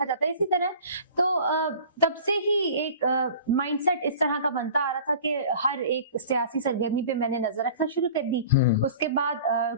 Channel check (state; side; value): inverted; both; correlation -0.43